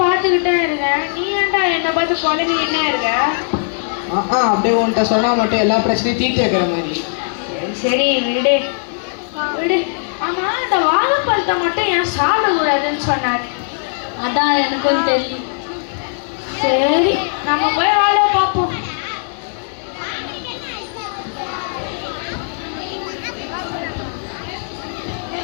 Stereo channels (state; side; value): silent; right; digital silence